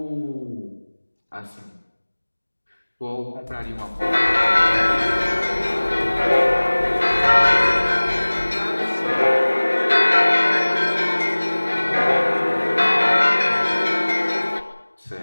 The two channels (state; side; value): inverted; both; correlation -1.00